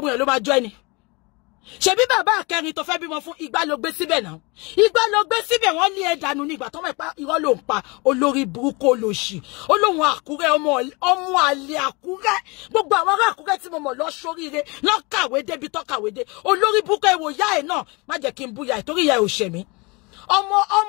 yẹn ló máa jọ ẹni ṣebí bàbá akẹrin tó fẹ́ bímọ fún Ìgbà ló gbé síbẹ̀ náà Ìgbà ló gbé síbẹ̀ wọ́n lé ẹ̀dànù nígbà tó mọ̀ pé irọ́ ló ń pa olórí burúkú olóṣì olóhùn Àkúrẹ́ ọmọ àlè Àkúrẹ́ gbogbo àwọn ará Àkúrẹ́ tí mo mọ̀ lọ sóríire lọ kàwé débi tó kàwé dé olórí burúkú ẹ̀wò ìyá ẹ̀ náà má jẹ́ kí n bú ìyá ẹ̀ torí ìyá ẹ̀ ò ṣẹ̀ mí ọmọ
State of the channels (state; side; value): quieter; right; 27.6 dB